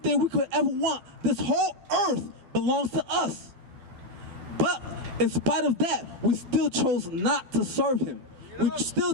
we could ever want. This whole earth belongs to us. But in spite of that, we still chose not to serve him. We still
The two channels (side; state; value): left; late; 12 ms